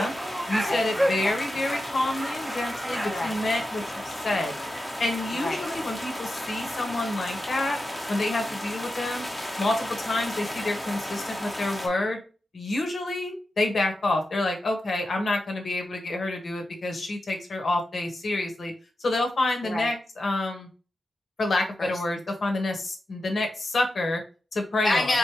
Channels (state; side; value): normal; both; correlation 0.90